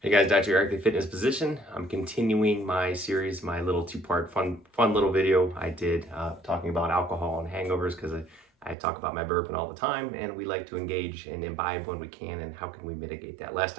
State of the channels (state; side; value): drops out; left; at 8.8 s